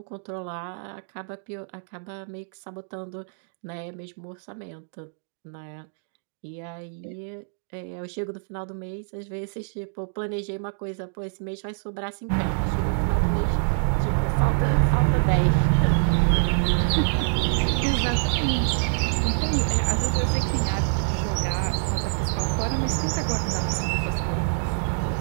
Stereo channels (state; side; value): silent; left; digital silence